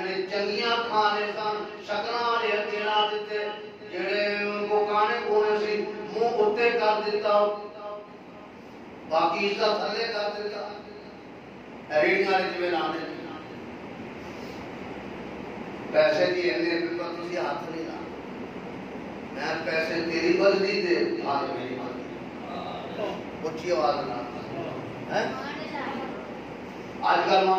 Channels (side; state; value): both; identical; correlation 1.00